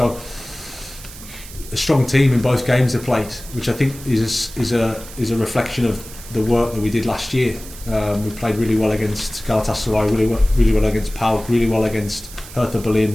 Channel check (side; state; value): right; noise; hiss, 16 dB below the sound